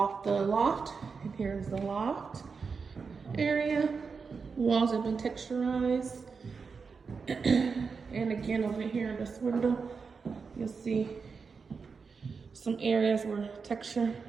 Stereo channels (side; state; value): left; quieter; 5.2 dB